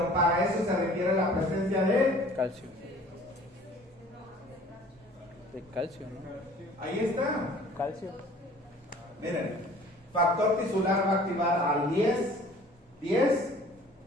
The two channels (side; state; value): both; normal; correlation 0.50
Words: para eso se requiere la presencia de Calcio. De calcio, ¿no? ahí está. Calcio. Miren, factor tisular va a activar al 10